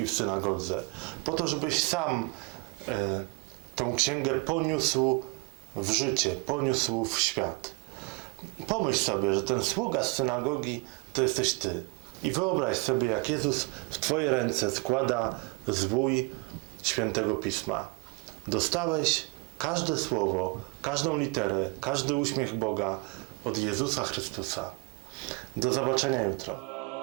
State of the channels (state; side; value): quieter; left; 28.8 dB